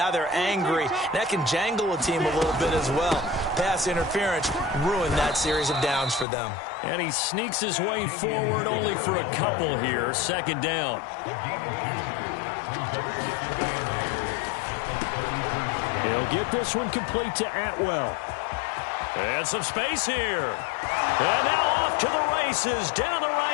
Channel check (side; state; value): right; drops out; at 6.2 s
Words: they're angry. That can jangle a team a little bit as well. Pass interference ruined that series of downs for them. And he sneaks his way forward only for a couple here. 2nd down. He'll get this one complete to Atwell. And some space here. And now off to the races down the